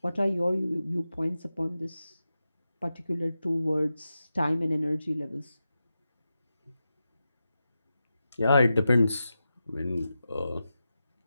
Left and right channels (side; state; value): both; inverted; correlation -0.91